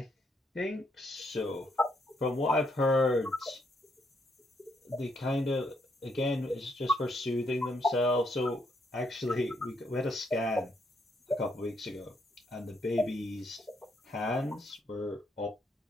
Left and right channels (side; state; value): both; normal; correlation 0.74